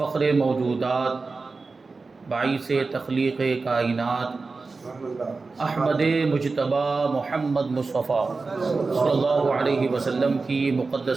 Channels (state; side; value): quieter; left; 4.0 dB